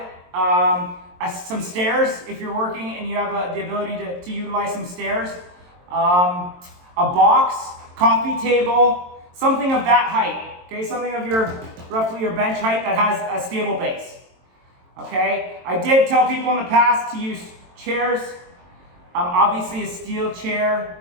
some stairs if you're working and you have the ability to utilize some stairs, a box, coffee table, something of that height. Okay, something of roughly your bench height that has a stable base. Okay, I did tell people in the past to use chairs. Obviously a steel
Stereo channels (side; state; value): left; late; 22 ms